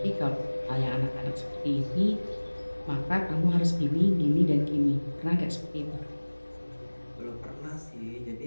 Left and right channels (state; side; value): inverted; both; correlation -1.00